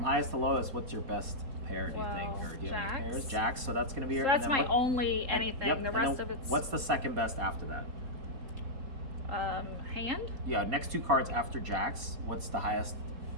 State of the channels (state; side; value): late; left; 4.2 ms